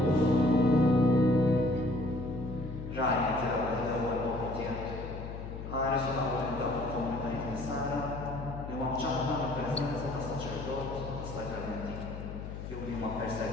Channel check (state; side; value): noise; left; hum, 8 dB below the sound